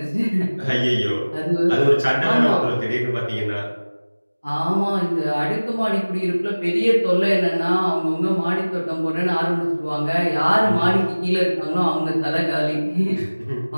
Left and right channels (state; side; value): inverted; both; correlation -1.00